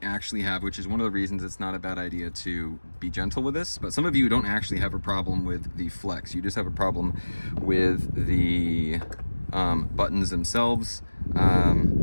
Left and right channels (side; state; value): both; inverted; correlation -1.00